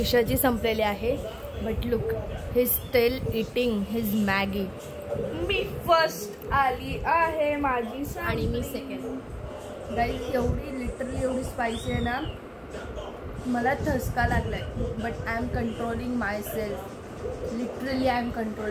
संपलेली आहे. But look, he still eating his Maggi. Me first आली आहे, माझी आणि मी सेकंड. गाईज एवढी लिटरली एवढी स्पायसी आहे ना, मला ठसका लागलाय. But I am controlling my self. Literally I am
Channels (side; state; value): both; identical; correlation 1.00